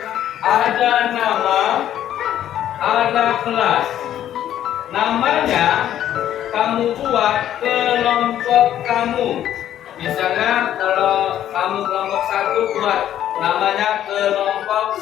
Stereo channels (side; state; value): right; quieter; 11.3 dB